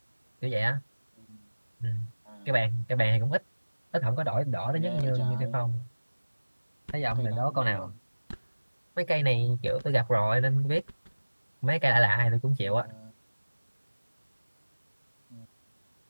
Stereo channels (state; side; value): inverted; both; correlation -1.00